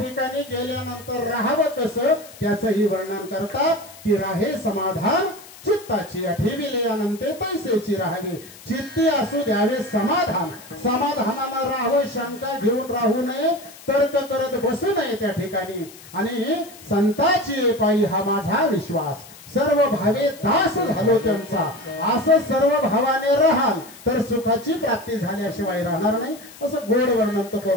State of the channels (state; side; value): noise; left; hiss, 20 dB below the sound